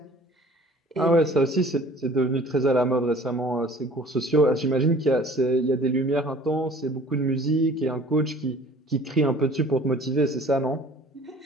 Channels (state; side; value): normal; both; correlation 0.50